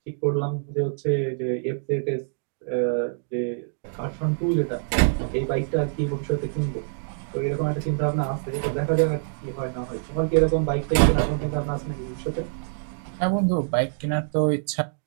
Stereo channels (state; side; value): silent; left; digital silence